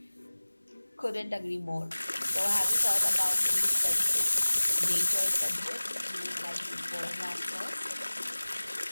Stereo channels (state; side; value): inverted; both; correlation -1.00